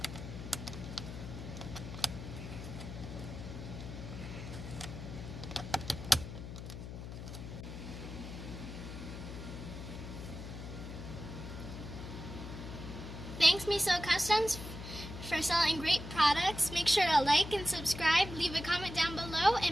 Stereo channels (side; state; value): left; noise; hum, 9 dB below the sound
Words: Thanks Meso Customs for selling great products. Make sure to like and subscribe, leave a comment down below,